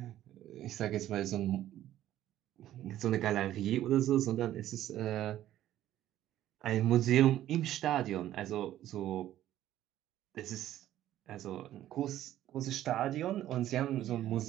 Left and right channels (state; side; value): quieter; left; 12.9 dB